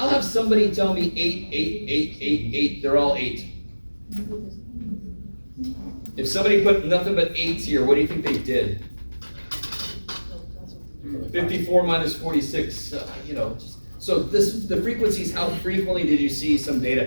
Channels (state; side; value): inverted; both; correlation -1.00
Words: have somebody tell me 8, 8, 8, 8, 8, they're all 8. If somebody put nothing but 8s here, what do you think they did? 54 minus 46, so the frequencies, how frequently did you see some data?